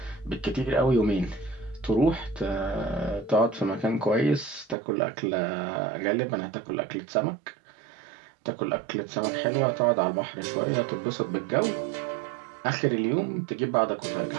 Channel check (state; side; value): drops out; left; at 4.8 s